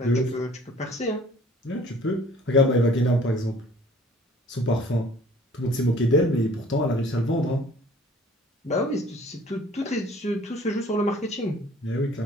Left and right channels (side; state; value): both; normal; correlation 0.53